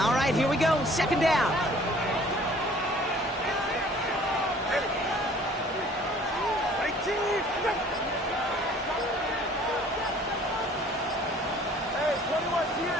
right, here we go. Second down.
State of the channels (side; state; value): both; normal; correlation 0.53